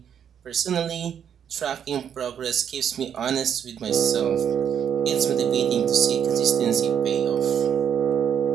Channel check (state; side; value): quieter; left; 8.5 dB